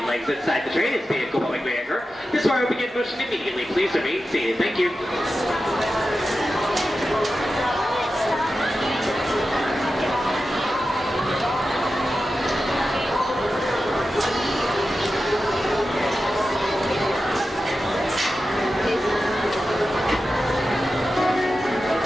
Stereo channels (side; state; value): both; normal; correlation 0.92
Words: legs inside the train as vehicle public anchor. This ride will begin motion immediately. Please remain seated. Thank you.